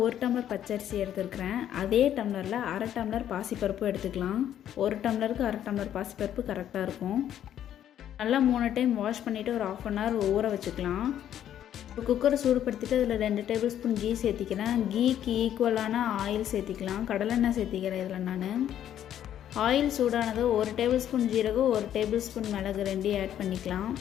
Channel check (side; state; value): right; quieter; 10.7 dB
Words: 1 டம்ளர் பச்சரிசி எடுத்துருக்கிறேன். அதே டம்ளரில் அரை டம்ளர் பாசிப்பருப்பு எடுத்துக்கலாம். 1 டம்ளருக்கு அரை டம்ளர் பாசிப்பருப்பு கரெக்டாக இருக்கும். நல்லா 3 டைம் வாஷ் பண்ணிவிட்டு ஒரு 1/2 hour ஊற வச்சுக்கலாம். ஒரு குக்கரை சூடுபடுத்திட்டு அதில் 2 டேபிள் ஸ்பூன் கீ சேர்த்திக்கிறேன். கீக்கு ஈக்குவலான ஆயில் சேர்த்திக்கலாம். கடலெண்ணெய் சேர்த்திக்கிறேன் இதில் நான். ஆயில் சூடானது 1 டேபிள் ஸ்பூன் ஜீரகம், 1 டேபிள் ஸ்பூன் மிளகு 2 ஆட் பண்ணிக்கலாம்.